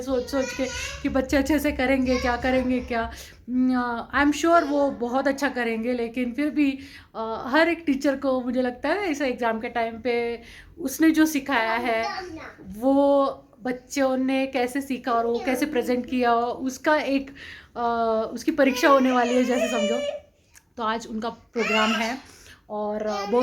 के कि बच्चे अच्छे से करेंगे क्या, करेंगे क्या। आई एम श्योर वो बहुत अच्छा करेंगे, लेकिन फिर भी हर एक टीचर को मुझे लगता है ऐसे एग्ज़ाम के टाइम पे उसने जो सिखाया है वो बच्चों ने कैसे सीखा और वो कैसे प्रेजेंट किया, उसका एक उसकी परीक्षा होने वाली है जैसे समझो। तो आज उनका प्रोग्राम है और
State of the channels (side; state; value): both; identical; correlation 1.00